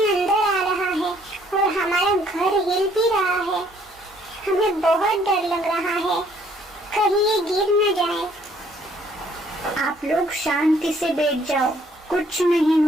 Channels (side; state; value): both; normal; correlation 0.63